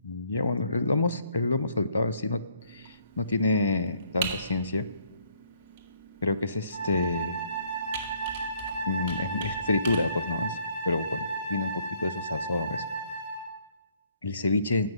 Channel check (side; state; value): both; inverted; correlation -0.65